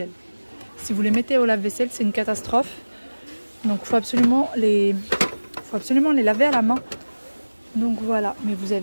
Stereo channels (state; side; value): inverted; both; correlation -1.00